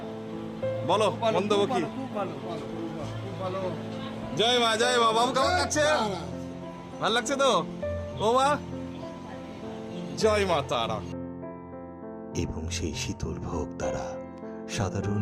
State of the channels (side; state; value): both; identical; correlation 1.00